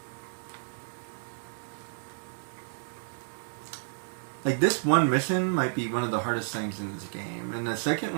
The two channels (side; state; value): left; silent; digital silence